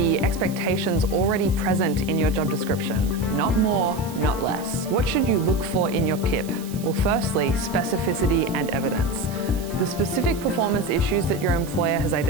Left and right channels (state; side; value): noise; right; hiss, 17 dB below the sound